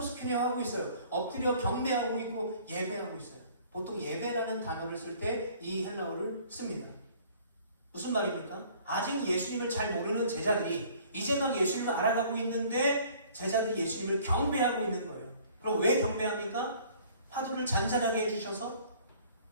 하고 있어요. 엎드려 경배하고 있고 예배하고 있어요. 보통 예배라는 단어를 쓸 때 이 헬라어를 씁니다. 무슨 말입니까? 아직 예수님을 잘 모르는 제자들이 이제 막 예수님을 알아가고 있는데 제자들이 예수님을 경배하고 있는 거예요. 그럼 왜 경배합니까? 파도를 잔잔하게 해주셔서,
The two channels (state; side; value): inverted; both; correlation -0.54